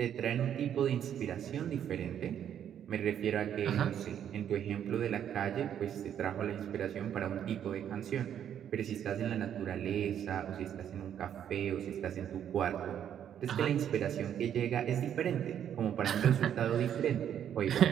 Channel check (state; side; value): quieter; left; 9.5 dB